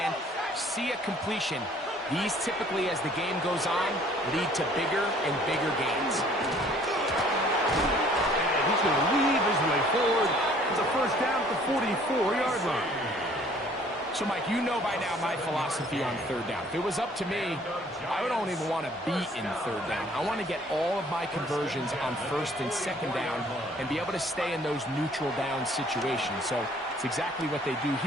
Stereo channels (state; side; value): normal; both; correlation 0.57